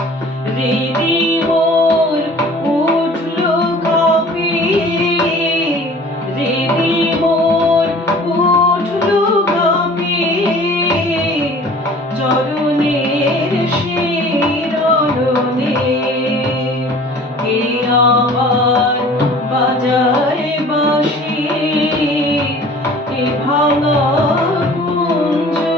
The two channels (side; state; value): both; normal; correlation 0.47